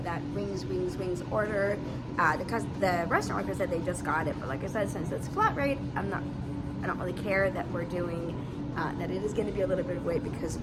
that wings order. The restaurant worker said they just got it, but like I said, since it's flat rate, I don't really care that we're doing that. It is going to be a little bit of wait because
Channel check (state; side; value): identical; both; correlation 1.00